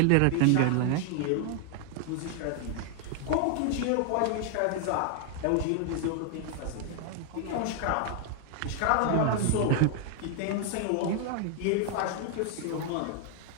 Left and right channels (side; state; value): both; different; correlation 0.00